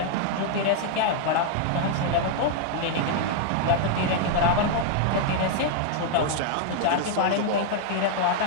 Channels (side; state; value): both; different; correlation 0.00